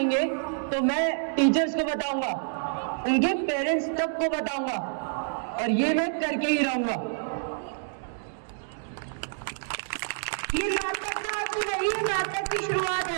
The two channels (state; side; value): silent; left; digital silence